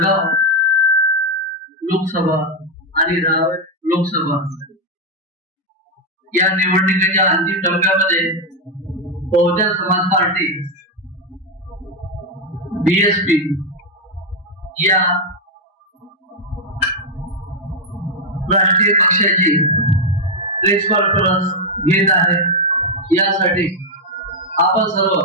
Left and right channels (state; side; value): normal; both; correlation 0.02